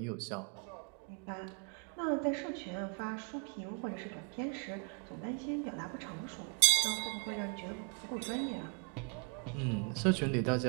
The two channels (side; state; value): left; quieter; 37.8 dB